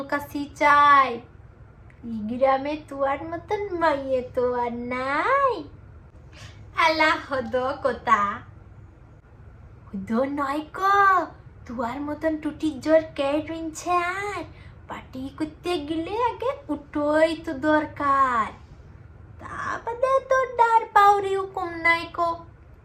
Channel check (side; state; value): both; identical; correlation 1.00